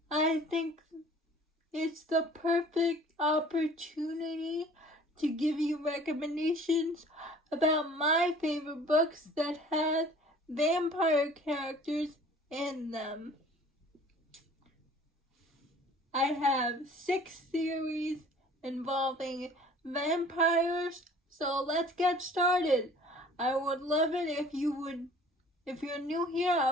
I think it's the perfect opportunity to give you recommendations about my favorite books that have vampire characters in them. I have 6 series involving vampires, so let's get started. I would love it if you're new here,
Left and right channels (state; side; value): normal; both; correlation 0.50